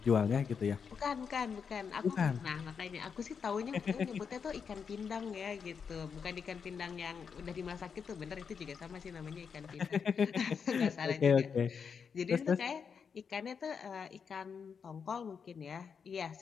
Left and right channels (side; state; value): right; quieter; 6.4 dB